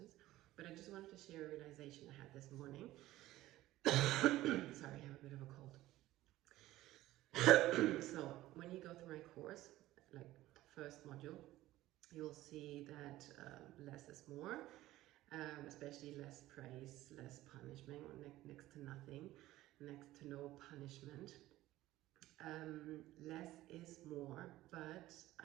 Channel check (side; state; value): left; quieter; 16.0 dB